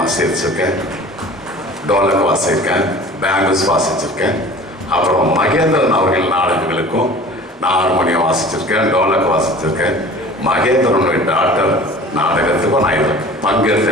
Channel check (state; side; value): normal; both; correlation 0.43